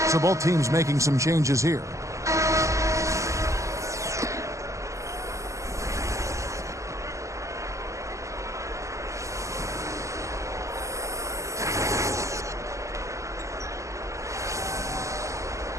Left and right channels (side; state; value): left; late; 0.15 ms